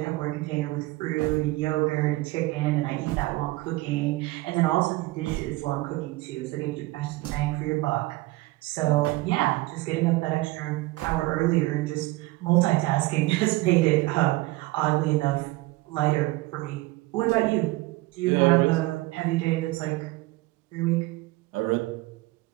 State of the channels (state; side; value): quieter; left; 20.3 dB